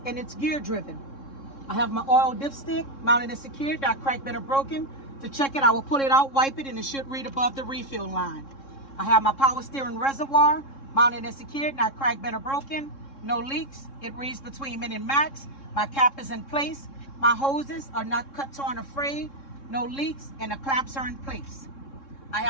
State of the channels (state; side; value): late; right; 3.7 ms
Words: and it's gear driven. I have my oil dipstick mounted and secured, not cracked, bent, or broken. To check it, I will pull it out, wipe it, and it should read above the refill line. I have my power steering reservoir mounted and secured, not cracked, bent, or broken, no leaks. It reads between min and max. My cap is in place. My hoses are not cut, torn, or frayed, no leaks, and the clamps are in place. I